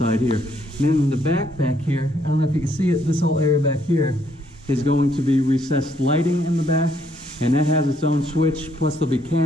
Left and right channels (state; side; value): normal; both; correlation 0.70